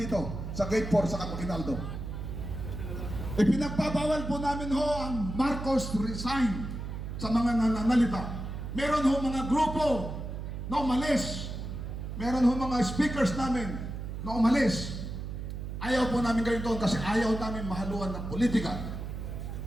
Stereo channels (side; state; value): right; noise; hum, 6 dB below the sound